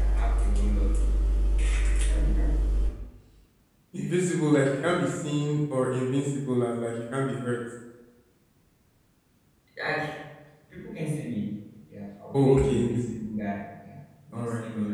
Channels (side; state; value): both; identical; correlation 1.00